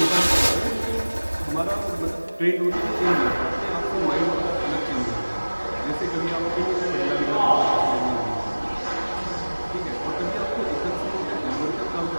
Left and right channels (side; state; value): both; inverted; correlation -1.00